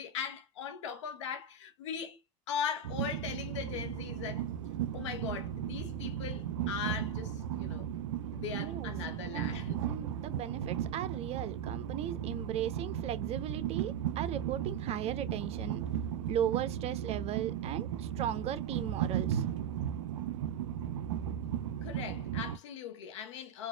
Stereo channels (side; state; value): left; quieter; 5.9 dB